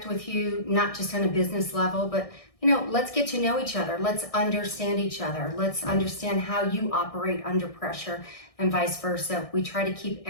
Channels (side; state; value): right; late; 1.6 ms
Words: with you, not just on a business level, but let's get to know each other. Let's understand each other. Let's understand how you operate under pressure and vice versa. We try to keep